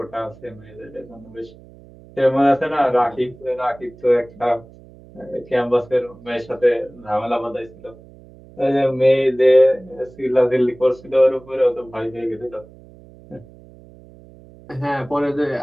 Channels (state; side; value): noise; right; hum, 22 dB below the sound